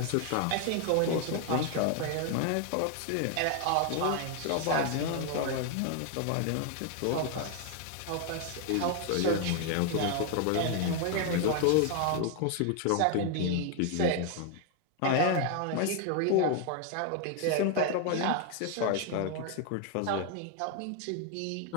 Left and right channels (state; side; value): different; both; correlation 0.00